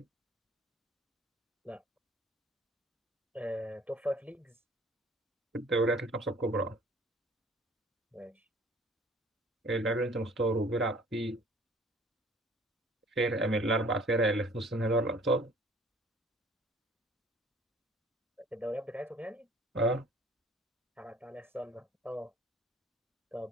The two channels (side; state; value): both; normal; correlation 0.53